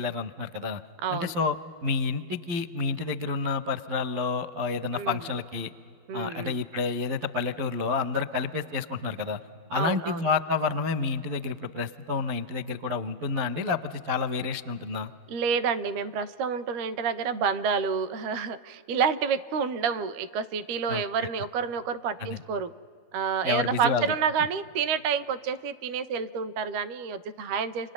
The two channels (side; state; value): left; late; 12 ms